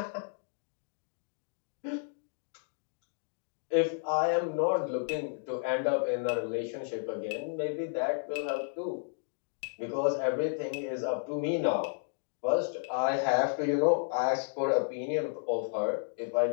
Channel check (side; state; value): right; silent; digital silence